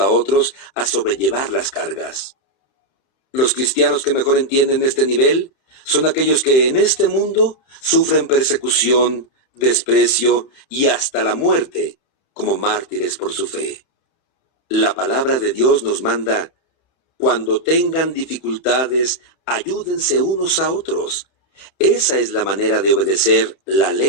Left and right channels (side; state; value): right; late; 31 ms